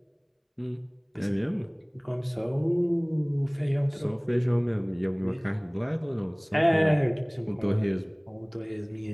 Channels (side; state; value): both; identical; correlation 1.00